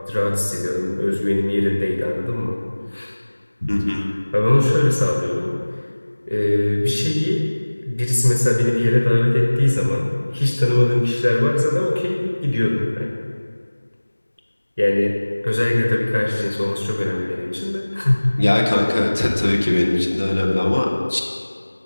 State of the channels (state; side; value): inverted; both; correlation -1.00